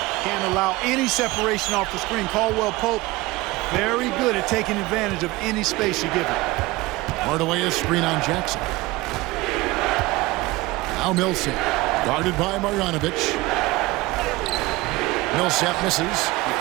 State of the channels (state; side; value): quieter; left; 20.5 dB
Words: Can't allow any separation off the screen. Caldwell Pope, very good at taking advantage of any space you give him. Hardaway a screen on Jackson. Now Millsap. Guarded by Marjanovic. Millsap misses.